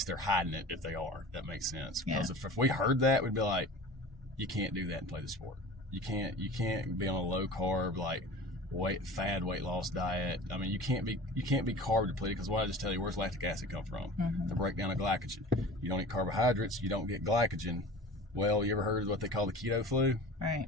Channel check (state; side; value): normal; both; correlation 0.38